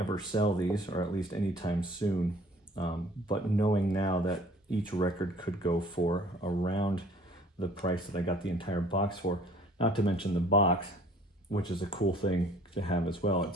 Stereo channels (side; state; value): both; normal; correlation 0.53